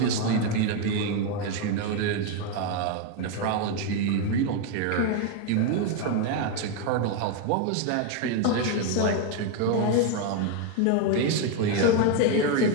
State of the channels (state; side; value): different; both; correlation 0.01